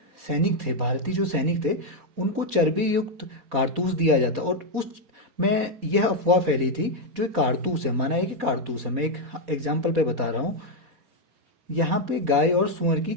जो सैनिक थे उनको चर्बी युक्त कारतूस दिया जाता, और उस में यह अफवाह फैली थी जो एक कारतूस है, माना है कि कारतूस है। मैं एक एग्जाम्पल पे बता रहा हूँ, यहाँ पे गाय और सुअर की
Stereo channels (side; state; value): left; late; 4.2 ms